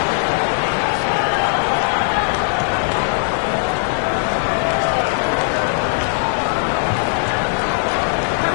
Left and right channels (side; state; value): right; silent; digital silence